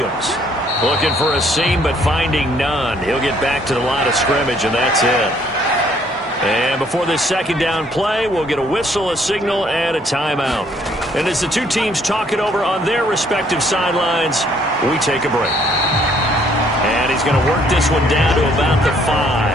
Looking for a seam, but finding none. He'll get back to the line of scrimmage, and that's it. And before this 2nd down play, we'll get a whistle, a signal, and a timeout. And as the two teams talk it over on their respective sidelines, we take a break. And he's going to work this one down to about the 5.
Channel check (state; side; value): normal; both; correlation 0.64